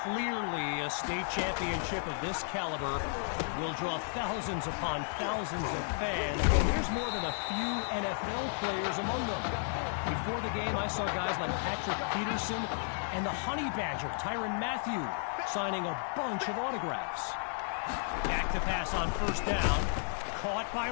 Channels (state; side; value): silent; right; 56 dB below the other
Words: clearly a state championship of this caliber will draw thousands upon thousands of fans. And there's more than a few NFL players among them. Before the game, I saw guys like Patrick Peterson and the Honey Badger, Tyrann Mathieu, signing a bunch of autographs. Back to pass on 1st down. Caught by